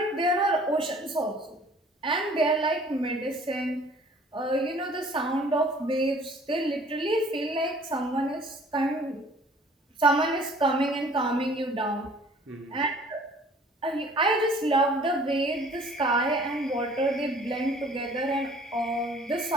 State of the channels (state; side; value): normal; both; correlation 0.53